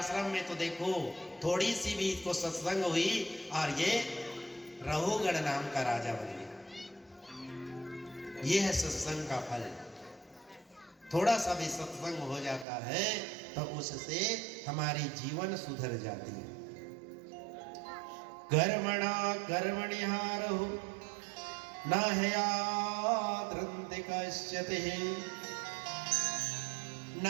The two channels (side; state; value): left; drops out; at 12.7 s